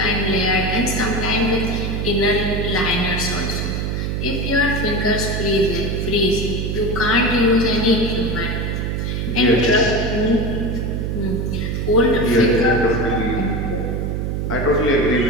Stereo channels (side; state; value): right; noise; hum, 1 dB below the sound